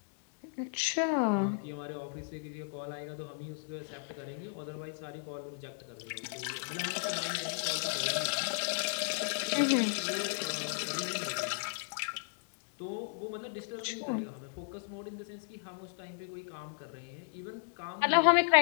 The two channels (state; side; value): silent; right; digital silence